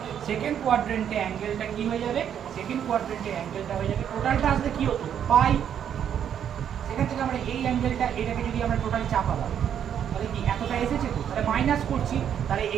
সেকেন্ড কোয়াড্রেন্টে অ্যাঙ্গেলটা কি হয়ে যাবে, সেকেন্ড কোয়াড্রেন্টে অ্যাঙ্গেলটা হয়ে যাবে, টোটালটা আসলে কি হতো পাই, সেখান থেকে আমরা এই অ্যাঙ্গেলটা এটাকে যদি আমরা টোটাল চাপাবো তাহলে কি এতটা এসেছে, তো তাহলে মাইনাস করছি, তাহলে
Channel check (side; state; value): left; quieter; 9.0 dB